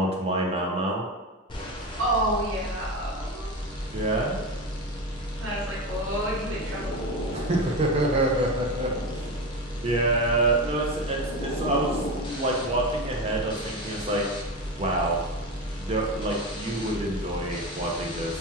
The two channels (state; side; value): normal; both; correlation 0.22